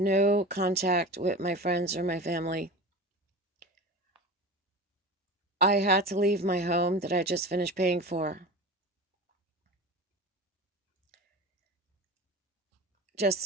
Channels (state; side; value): normal; both; correlation 0.31